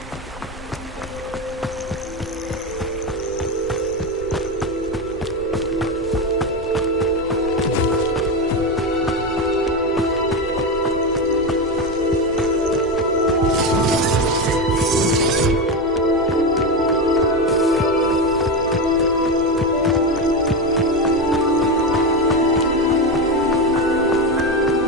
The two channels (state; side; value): normal; both; correlation 0.15